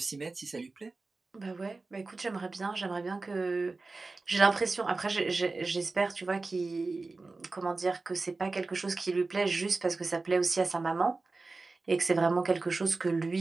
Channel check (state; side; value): quieter; left; 3.6 dB